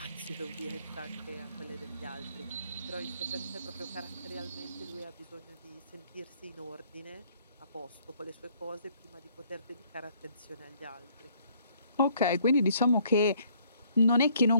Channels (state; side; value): inverted; both; correlation -0.64